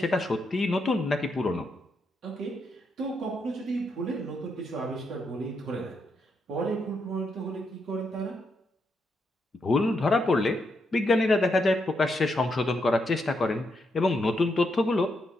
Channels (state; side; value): normal; both; correlation 0.80